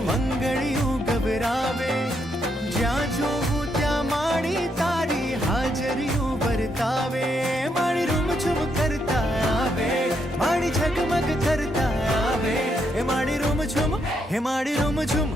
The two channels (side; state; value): both; normal; correlation 0.77